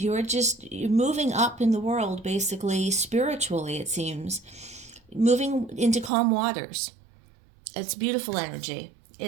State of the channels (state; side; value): drops out; left; at 6.1 s